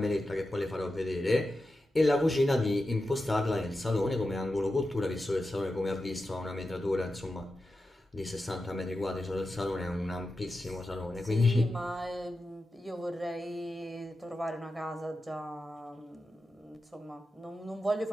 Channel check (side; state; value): both; normal; correlation 0.91